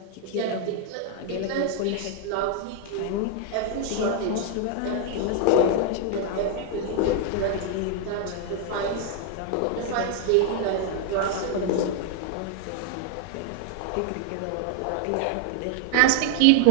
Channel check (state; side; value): different; both; correlation 0.00